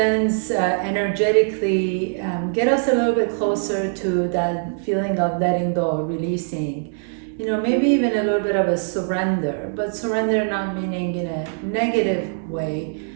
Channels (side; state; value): left; silent; 64 dB below the other